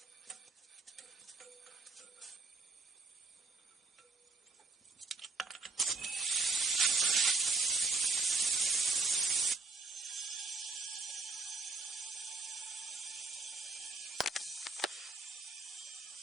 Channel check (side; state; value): left; quieter; 3.8 dB